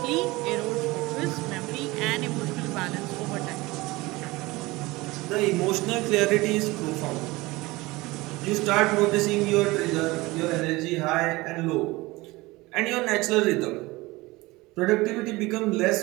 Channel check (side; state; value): left; quieter; 21.4 dB